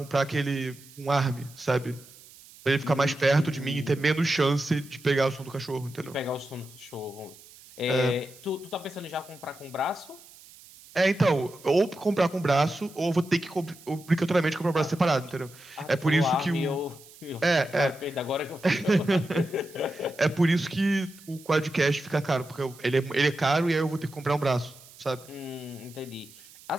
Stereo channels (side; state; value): right; noise; hiss, 22 dB below the sound